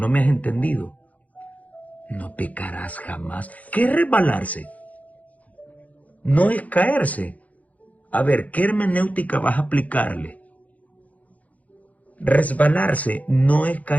me has entendido. No pecarás jamás. ¿Qué es resbalarse? No es caerse. A ver, ¿qué hermenéutica vas a aplicarle? Resbalarse no es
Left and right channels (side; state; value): right; late; 0.072 ms